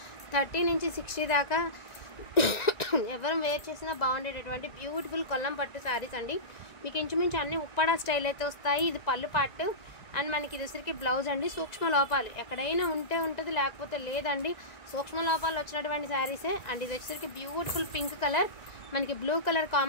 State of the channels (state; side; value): late; right; 1.9 ms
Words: 30 నుంచి 60 దాకా ఎవరం వేర్ చేసినా బాగుండేటటువంటి బ్యూటిఫుల్ కొల్లం పట్టు సారీస్ అండి। మీకు ఇంచుమించు అన్ని ఉప్పాడ స్టైల్ అయితే వస్తాయి। ఇది పళ్ళు పార్ట్ అండ్ మనకి ఇది వచ్చరికి బ్లౌజ్ అండి। సూక్ష్మ లోపాలు ఎక్కడైనా ఉంటే ఉంటుంది, లేకపోతే లేదండి। సూక్ష్మ లోపాలు వచ్చినటువంటి శారీసే అండ్ ఇది వచ్చరికి బ్యూటిఫుల్ పింక్ కలర్, మనకి బ్లూ కలర్